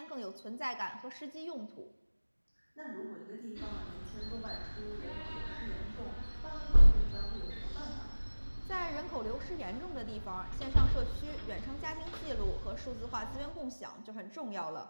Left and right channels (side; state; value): both; inverted; correlation -1.00